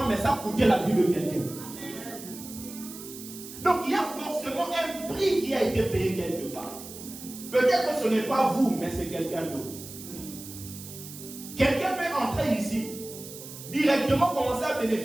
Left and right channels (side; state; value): right; noise; hiss, 13 dB below the sound